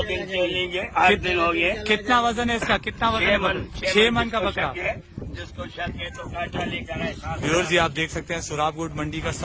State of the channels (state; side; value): identical; both; correlation 1.00